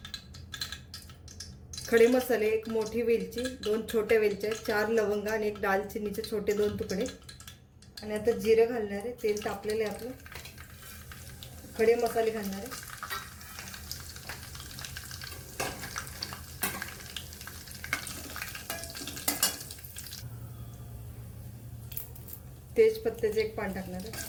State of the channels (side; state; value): both; identical; correlation 1.00